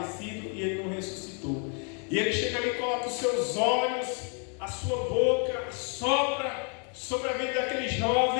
e ele não ressuscitou. E ele chega ali e coloca os seus olhos, a sua boca, sopra sobre a vida daquele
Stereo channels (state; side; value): quieter; right; 39.5 dB